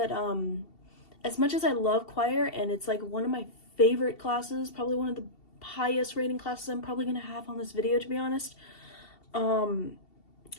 as much as I love choir and it's like one of my favorite classes, probably one of the highest rating classes I'm probably gonna have on this video, to be honest,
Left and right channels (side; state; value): right; late; 2.7 ms